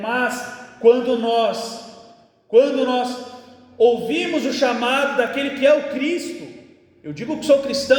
mas quando nós ouvimos o chamado daquele que é o Cristo, eu digo que sou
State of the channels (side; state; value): both; identical; correlation 1.00